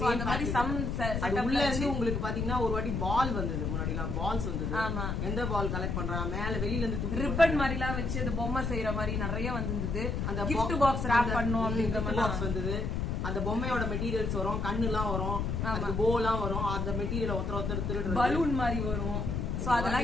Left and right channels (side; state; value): left; noise; rumble, 1 dB below the sound